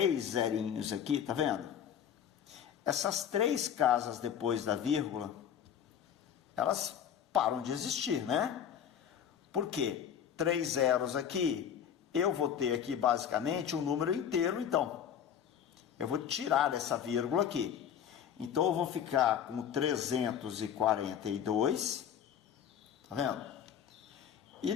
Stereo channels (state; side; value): quieter; right; 8.8 dB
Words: zerinhos aqui, tá vendo? Essas 3 casas depois da vírgula, elas param de existir, né? Por quê? 3 zeros aqui, eu vou ter aqui basicamente um número inteiro, então. Eu vou tirar essa vírgula aqui. Então, eu vou ficar com 342, tá vendo? E